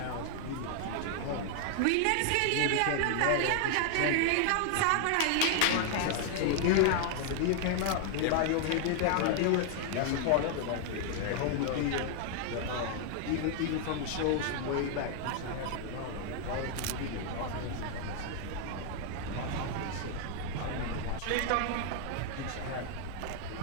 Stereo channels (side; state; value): both; different; correlation 0.00